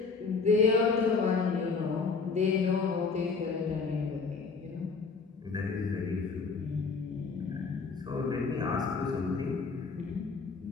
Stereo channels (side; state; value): right; quieter; 4.8 dB